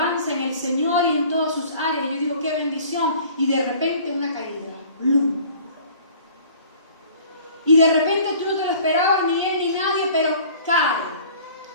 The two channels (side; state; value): both; inverted; correlation -0.49